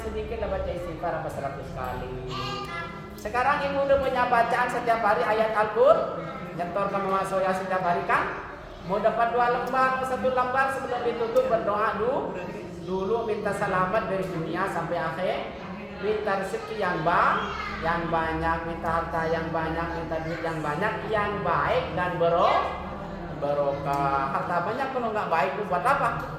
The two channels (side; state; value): both; identical; correlation 1.00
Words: lah baca istighfar 100 kali. Sekarang ibu udah punya bacaan setiap hari ayat Al-Qur'an, nyetor ke Mama Soya setiap hari kan? Mau dapat 2 lembar, 1 lembar sebelum ditutup berdoa dulu minta selamat dari dunia sampai akhir, minta rezeki yang banyak, minta harta yang banyak, minta duit yang banyak, yang baik dan barokah. Harta banyak kalau nggak baik itu buat apa?